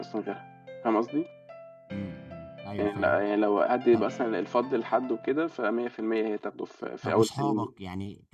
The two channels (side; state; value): both; identical; correlation 1.00